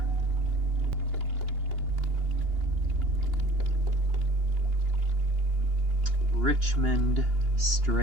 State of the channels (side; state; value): left; late; 2.8 ms